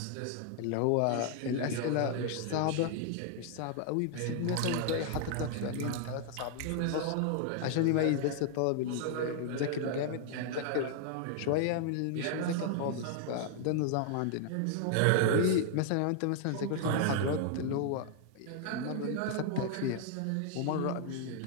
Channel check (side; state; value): both; different; correlation 0.00